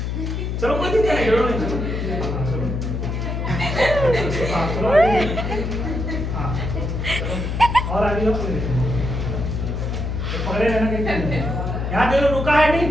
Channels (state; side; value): noise; left; hum, 2 dB below the sound